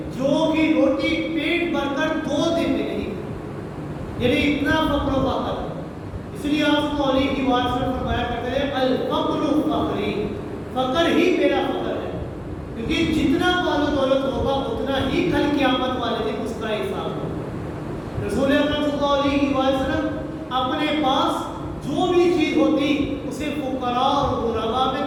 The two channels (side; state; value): both; identical; correlation 1.00